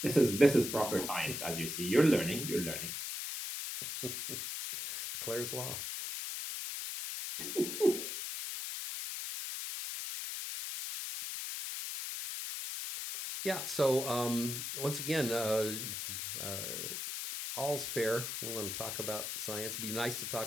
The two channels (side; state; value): left; noise; hiss, 4 dB below the sound